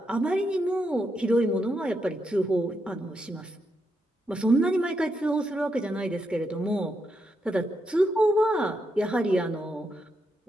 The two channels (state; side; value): normal; both; correlation 0.82